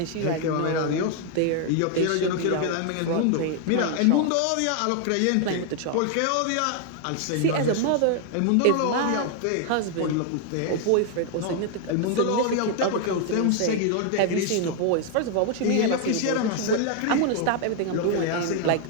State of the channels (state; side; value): different; both; correlation 0.00